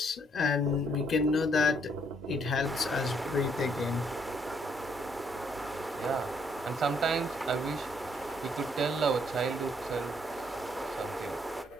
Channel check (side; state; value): both; normal; correlation 0.69